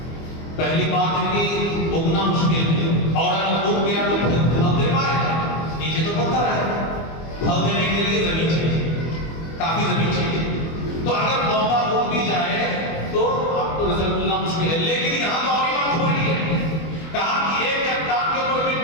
پہلی بات ہے کہ اگنا مشکل ہے، اور اگر اگ گیا تو پھل دے پائے گا؟ نیچے تو پتھر ہے، پھل دینے کے لیے زمین چاہیے، کافی زمین چاہیے۔ تو اگر پودا اگ بھی جائے تو آپ کو رزلٹ ملنا مشکل ہے۔ لیکن یہاں تو اور بات ہو رہی ہے، کہا کہ ایک چٹان کے اوپر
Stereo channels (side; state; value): right; late; 25 ms